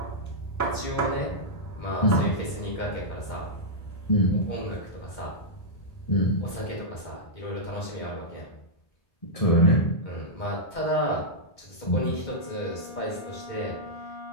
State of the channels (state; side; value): late; right; 2.1 ms